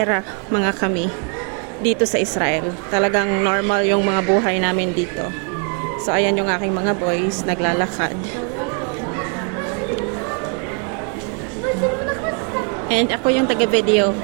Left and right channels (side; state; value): left; quieter; 38.5 dB